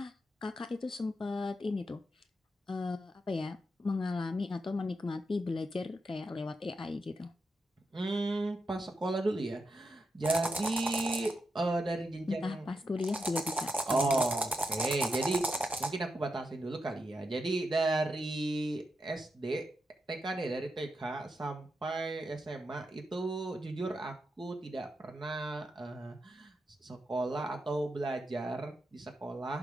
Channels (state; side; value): normal; both; correlation 0.85